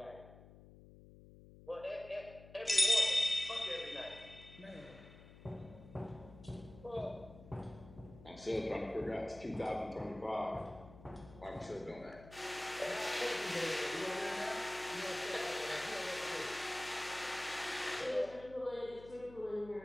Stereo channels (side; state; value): left; noise; hum, 19 dB below the sound